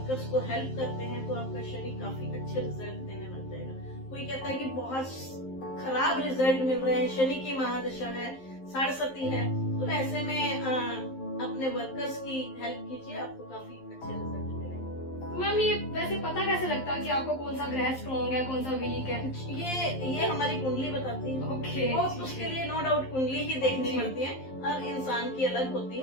को हेल्प करते हैं तो आपका शनि काफी अच्छे रिजल्ट देने लग जाएगा। कोई कहता है कि बहुत खराब रिजल्ट मिल रहे हैं, शनि की महादशा है, साढ़सती है, तो ऐसे में अपने वर्कर्स की हेल्प कीजिए, आपको काफी अच्छे रिजल्ट मिलेंगे। मैम ये वैसे पता कैसे लगता है कि आपको कौन सा ग्रह स्ट्रॉन्ग है, कौन सा वीक है? ये हमारी कुंडली बताती है। ओके, उसके लिए नो डाउट कुंडली ही देखनी पड़ती है, हर इंसान की अलग होती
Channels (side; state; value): right; late; 11 ms